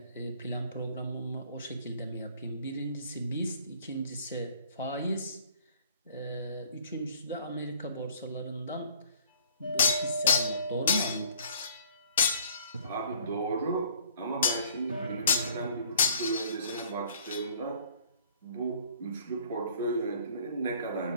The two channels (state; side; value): inverted; both; correlation -0.55